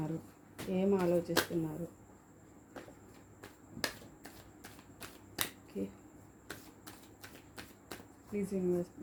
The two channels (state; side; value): identical; both; correlation 1.00